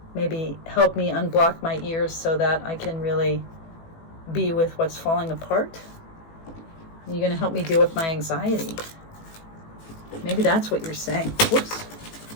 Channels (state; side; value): late; right; 18 ms